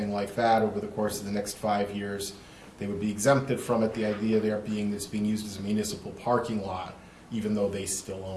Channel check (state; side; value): identical; both; correlation 1.00